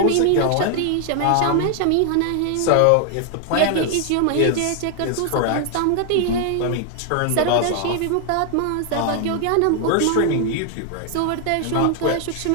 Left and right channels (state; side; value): different; both; correlation 0.00